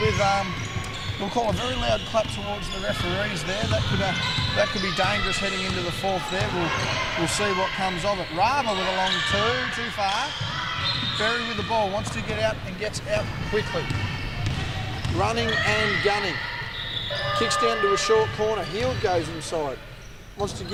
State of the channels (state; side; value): identical; both; correlation 1.00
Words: we'll call a very loud clap towards the referees there. That could be dangerous heading into the fourth there. We'll see what comes of it. Rava with a long 2, too far. Berry with the ball, wants to get out and gets out quickly. Running and gunning. Kicks down to a short corner. Heald goes inside. Wants to